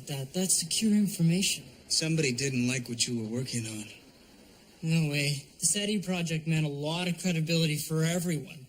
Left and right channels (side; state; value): both; identical; correlation 1.00